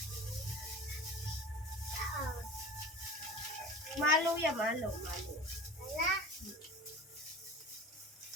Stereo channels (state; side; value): normal; both; correlation 0.36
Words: Malo yan, malo.